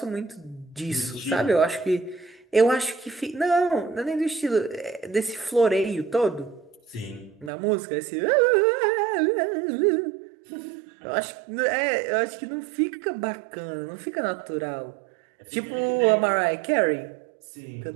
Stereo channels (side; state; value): left; drops out; at 7.5 s